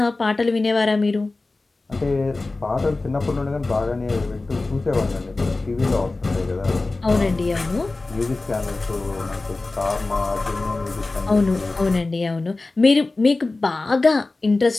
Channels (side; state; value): right; quieter; 3.3 dB